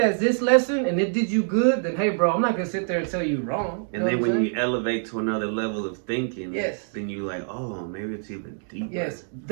this lesson and it did you good, then hey, bro, I'm not gonna sit there and tell you wrong. And then when you elevate to another level of thinking, yes, then you like, oh, maybe it's even deeper. Yes,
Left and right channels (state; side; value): silent; left; 62 dB below the other